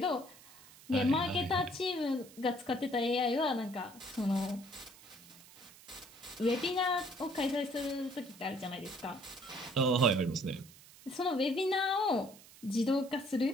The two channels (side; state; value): right; noise; hiss, 21 dB below the sound